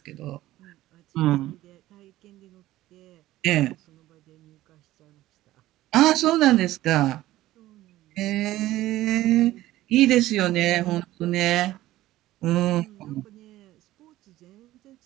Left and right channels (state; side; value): quieter; left; 15.6 dB